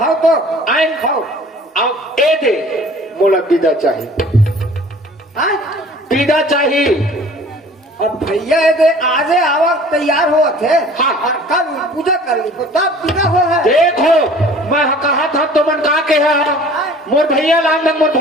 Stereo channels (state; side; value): normal; both; correlation 0.48